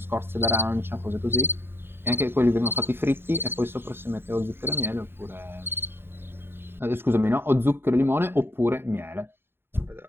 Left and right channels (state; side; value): late; left; 0.11 ms